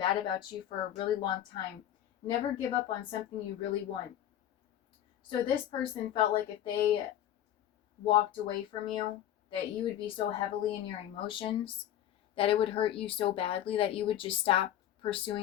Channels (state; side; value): quieter; right; 11.5 dB